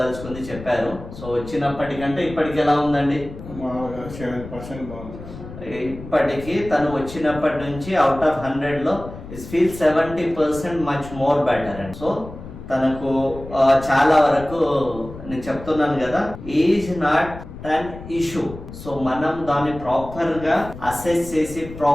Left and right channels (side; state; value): left; noise; rumble, 13 dB below the sound